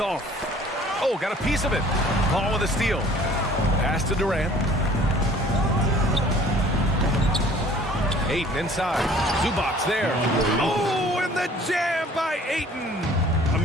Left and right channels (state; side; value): normal; both; correlation 0.53